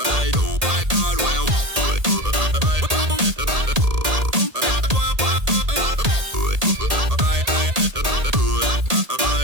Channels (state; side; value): late; left; 1.8 ms